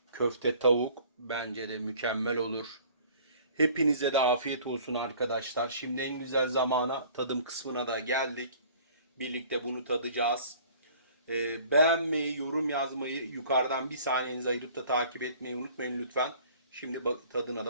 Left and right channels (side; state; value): both; inverted; correlation -0.51